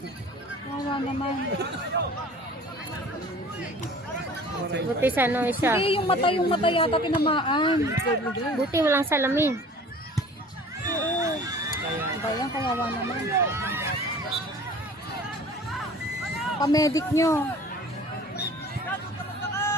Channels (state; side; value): normal; both; correlation 0.45